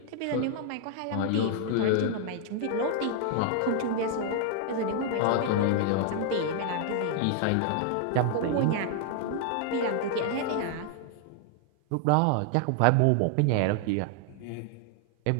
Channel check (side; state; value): both; different; correlation 0.00